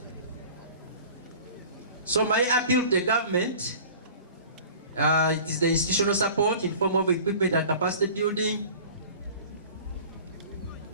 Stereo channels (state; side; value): inverted; both; correlation -0.43